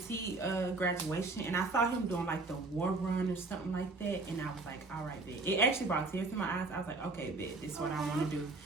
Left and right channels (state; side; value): quieter; left; 3.4 dB